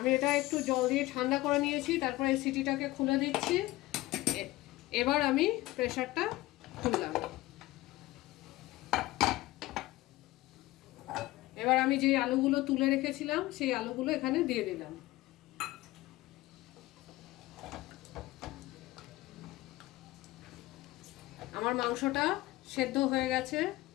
এটা একটু জল দিয়ে ঠান্ডা করে নিয়েছি, তারপরে এই সিটিটাকে খুলে দিচ্ছি। এবার আমি প্রেসারটা খুললাম। এবার আমি যে আলুগুলো তুলে রেখেছিলাম সেই আলুগুলো এখানে দিয়ে দিলাম। আমার মাংসটা সেদ্ধ হয়ে গেছে,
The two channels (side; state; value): right; quieter; 18.2 dB